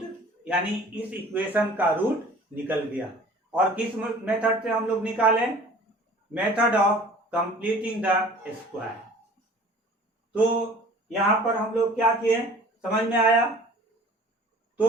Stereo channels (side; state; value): both; normal; correlation 0.47